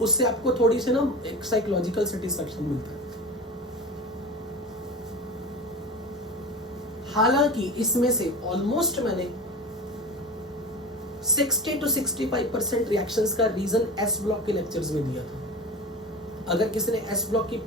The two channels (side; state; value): both; normal; correlation 0.31